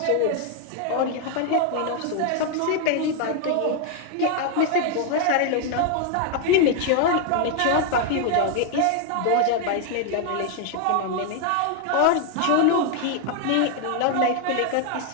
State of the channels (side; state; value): both; different; correlation 0.00